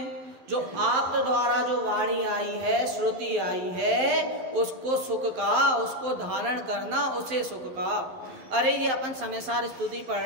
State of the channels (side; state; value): left; late; 12 ms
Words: जो आप द्वारा जो वाणी आई है, श्रुति आई है, उसको सुख कहा, उसको धारण करना, उसे सुख कहा। अरे ये अपन समयसार स्तुति पढ़